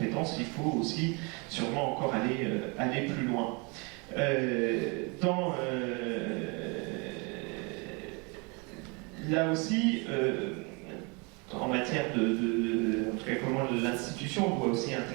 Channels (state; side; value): quieter; left; 30.8 dB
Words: il faut aussi sûrement encore aller plus loin. Là aussi, en matière en tout cas comment l'institution doit aussi